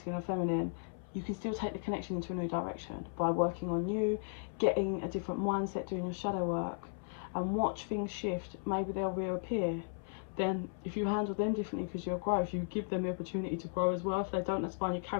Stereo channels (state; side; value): silent; right; 54 dB below the other